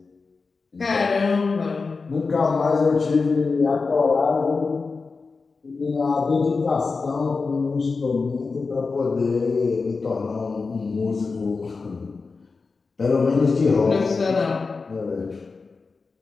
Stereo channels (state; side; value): quieter; right; 4.4 dB